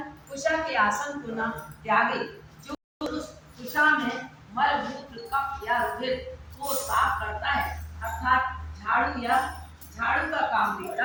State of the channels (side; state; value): both; identical; correlation 1.00